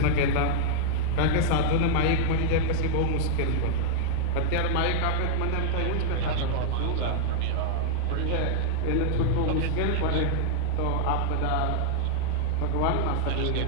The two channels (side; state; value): both; different; correlation -0.01